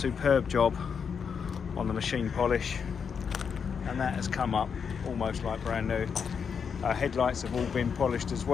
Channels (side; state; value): right; quieter; 6.5 dB